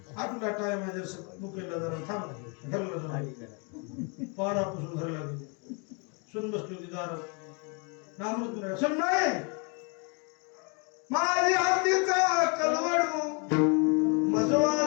आठवला टाइम आहे जर मुकेला जरा थांब घरला जाऊ 12 पुस्तक घरला गेले सुन बसली होती दारात नामृत सुन नाही माझी हातीचा कलवडू मज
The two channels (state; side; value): quieter; right; 34.8 dB